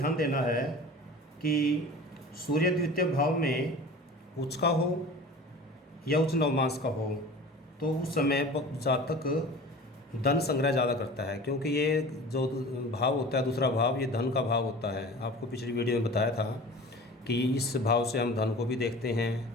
देना है कि सूर्य द्वितीय भाव में उच्च का हो या उच्च नवमांश का हो, तो उस समय जातक धन संग्रह ज़्यादा करता है, क्योंकि ये जो भाव होता है, दूसरा भाव, ये धन का भाव होता है। आपको पिछली वीडियो में बताया था कि इस भाव से हम धन को भी देखते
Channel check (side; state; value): both; normal; correlation 0.39